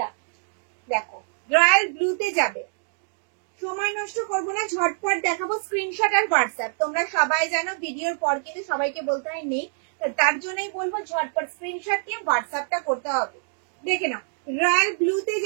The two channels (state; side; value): silent; left; digital silence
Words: দেখো রয়্যাল ব্লুতে যাবে। সময় নষ্ট করবো না, ঝটপট দেখাবো। স্ক্রিনশট আর হোয়াটসঅ্যাপ, তোমরা সবাই জানো ভিডিওর পর কিন্তু সবাইকে বলতে হয় নেই, তার জন্যই বলবো ঝটপট স্ক্রিনশট নিয়ে হোয়াটসঅ্যাপটা করতে হবে। দেখে নাও, রয়্যাল ব্লুতে